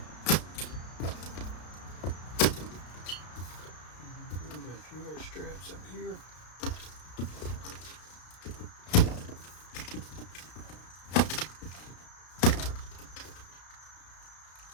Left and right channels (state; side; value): late; right; 33 ms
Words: We've got a few more straps up here.